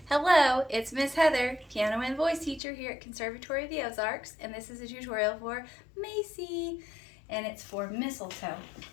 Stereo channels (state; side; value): drops out; right; at 2.6 s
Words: Hello, it's Miss Heather, piano and voice teacher here at Conservatory of the Ozarks, and this is a tutorial for Macie, and it's for Mistletoe